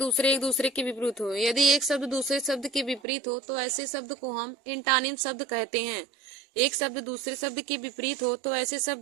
दूसरे के विपरीत हो। यदि एक शब्द दूसरे शब्द के विपरीत हो तो ऐसे शब्द को हम एंटानिम शब्द कहते हैं। एक शब्द दूसरे शब्द के विपरीत हो तो ऐसे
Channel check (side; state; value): left; drops out; at 3.0 s